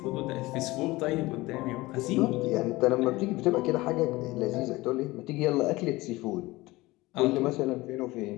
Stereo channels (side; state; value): right; quieter; 20.2 dB